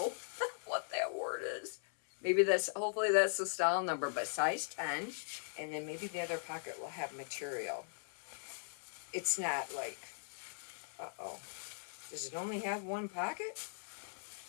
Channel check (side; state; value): right; silent; 51 dB below the other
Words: what that word is. Maybe that's, hopefully that's the style number, but size 10. And then maybe the other pocket will have material. It's not like, uh-oh. Does it only have one pocket?